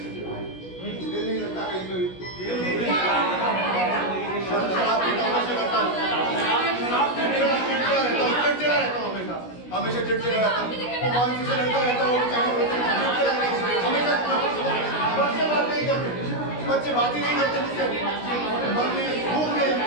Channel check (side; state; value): right; late; 16 ms